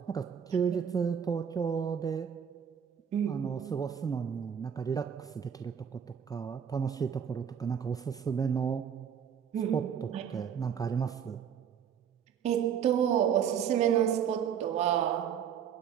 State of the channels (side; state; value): left; quieter; 8.0 dB